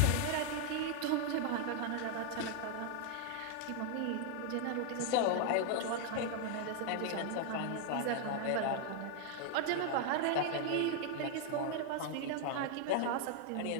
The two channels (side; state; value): both; different; correlation 0.00